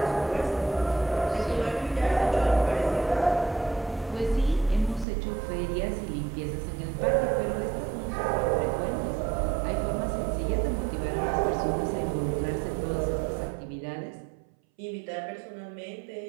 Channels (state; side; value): drops out; left; at 5.1 s